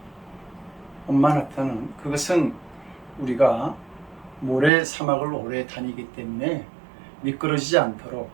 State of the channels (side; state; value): left; drops out; at 4.7 s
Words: 엄마 낙타는 그것은 우리가 모래 사막을 오래 다니기 때문에 미끄러지지 않도록